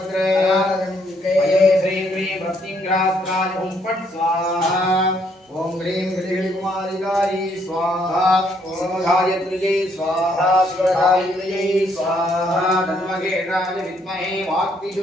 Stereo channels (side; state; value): both; normal; correlation 0.70